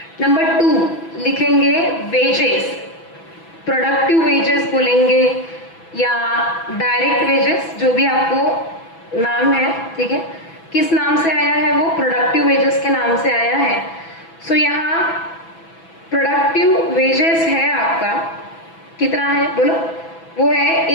नंबर 2 लिखेंगे वेजेस, प्रोडक्टिव वेजेस बोलेंगे या डायरेक्ट वेजेस, जो भी आपको नाम है, ठीक है, किस नाम से आया है वो प्रोडक्टिव वेजेस के नाम से आया है। सो यहाँ प्रोडक्टिव वेजेस है आपका कितना है बोलो, वो है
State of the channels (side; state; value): right; late; 6.1 ms